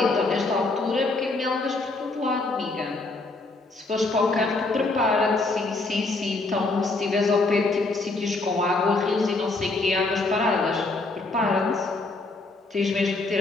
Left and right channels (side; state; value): right; quieter; 3.3 dB